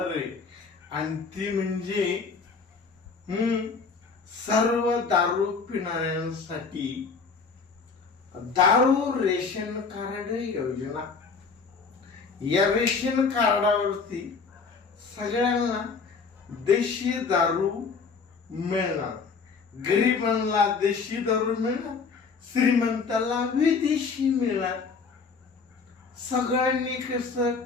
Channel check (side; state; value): right; quieter; 5.0 dB